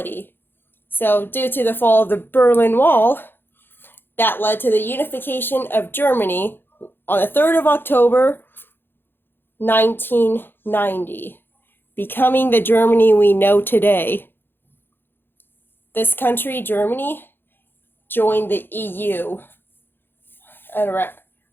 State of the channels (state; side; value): late; right; 0.10 ms